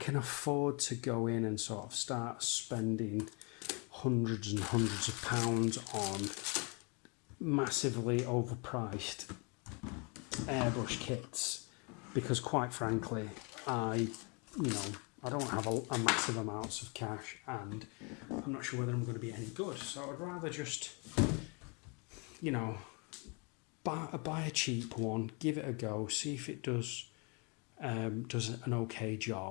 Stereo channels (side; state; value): right; quieter; 32.8 dB